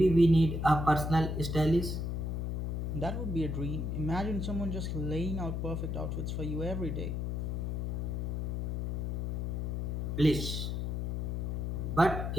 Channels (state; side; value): noise; left; hum, 1 dB below the sound